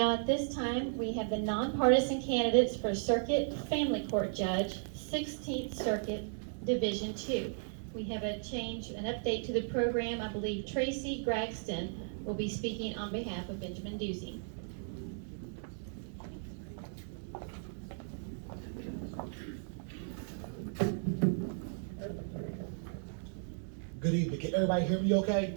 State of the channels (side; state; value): left; silent; digital silence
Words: at this time, we have the nonpartisan candidates for Circuit Family Court Judge, 16th Circuit, Division 2. We have an update to the program. I believe Tracy Graxton will be speaking on behalf of Benjamin Ducey. Good evening. Can everybody hear me